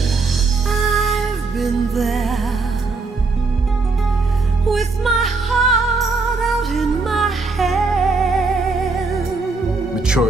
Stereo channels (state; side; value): quieter; left; 4.0 dB